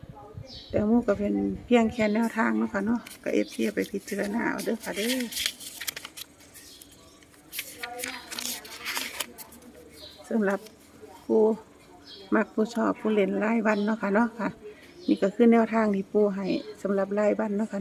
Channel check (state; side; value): identical; both; correlation 1.00